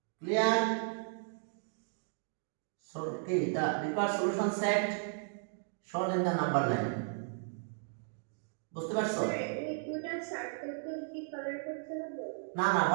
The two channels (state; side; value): silent; left; digital silence